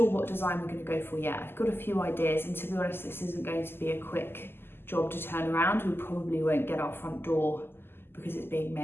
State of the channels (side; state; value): right; late; 0.11 ms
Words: what design we're going to go for yet. I've got a few ideas, and to be honest, this isn't going to be a quick job to turn around. We probably won't get our front door because it's being